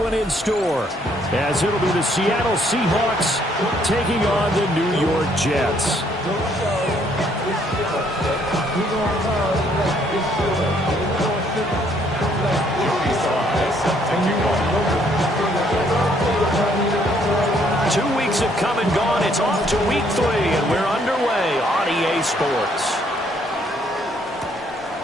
in store, as it'll be the Seattle Seahawks taking on the New York Jets. Have come and gone. It's off to week 3, and we're underway on EA Sports.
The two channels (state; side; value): normal; both; correlation 0.67